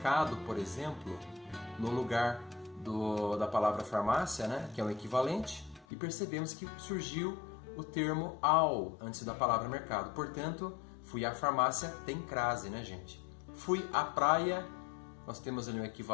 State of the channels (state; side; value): drops out; right; at 5.9 s